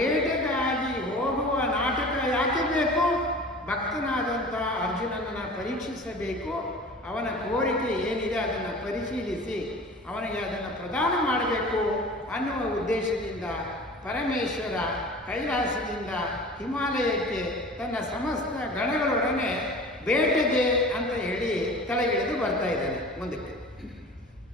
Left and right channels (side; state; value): both; normal; correlation 0.40